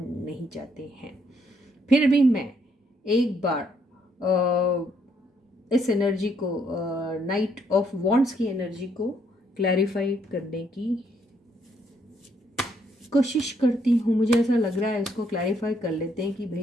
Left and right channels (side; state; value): both; normal; correlation 0.71